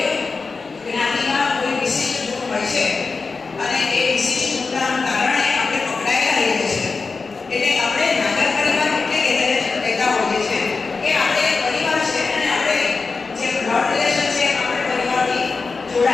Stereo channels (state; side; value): quieter; right; 4.4 dB